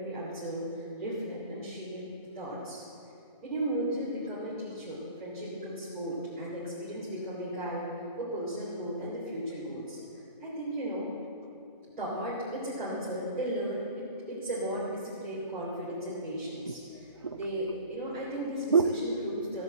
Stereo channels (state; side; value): inverted; both; correlation -0.41